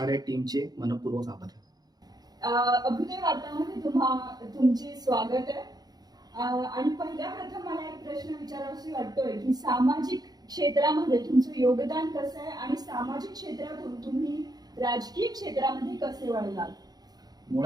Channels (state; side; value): late; left; 0.19 ms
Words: टीमचे मनपूर्वक आभार. अभ्युदय वार्तामध्ये तुमचे स्वागत आहे. आणि पहिल्या प्रथम मला एक प्रश्न विचारावासा वाटतोय की सामाजिक क्षेत्रामध्ये तुमचं योगदान कसं आहे आणि सामाजिक क्षेत्रातून तुम्ही राजकीय क्षेत्रामध्ये कसे वळलात?